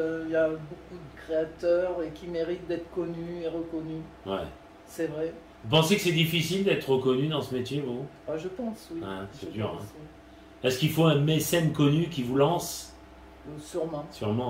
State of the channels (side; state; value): both; identical; correlation 1.00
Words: qu'il y a beaucoup de créateurs et qui méritent d'être connus et reconnus. Ouais. C'est vrai. Vous pensez que c'est difficile d'être reconnu dans ce métier, vous? Ah, je pense, oui. Ouais, c'est Je dur, pense, Est-ce qu'il faut un mécène connu qui vous lance? oui. Sûrement.